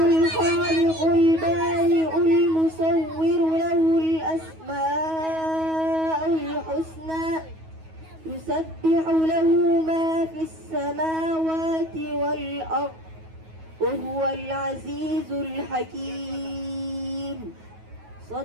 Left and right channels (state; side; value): late; left; 9.3 ms